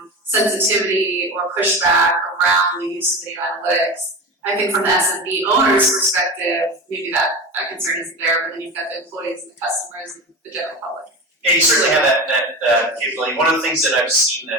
sensitivity or pushback around the use of video analytics? I think from the SMB owner's perspective, maybe that concern isn't there, but then you've got the employees and the customers and the general public. Yeah, you certainly have that capability. One of the things that I've seen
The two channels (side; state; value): both; normal; correlation 0.27